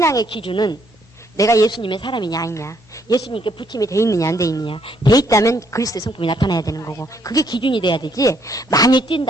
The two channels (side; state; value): both; normal; correlation 0.69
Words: 기준은 내가 예수님의 사람이냐 아니냐, 예수님께 붙임이 돼 있느냐 안 돼 있느냐, 돼 있다면 그리스도의 성품이 나타나야 되는 거고 그게 기준이 돼야 되지. 많이